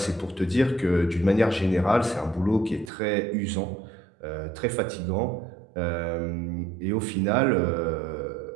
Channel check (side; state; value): left; drops out; at 2.9 s